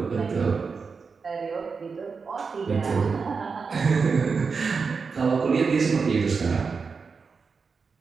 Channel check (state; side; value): quieter; left; 5.1 dB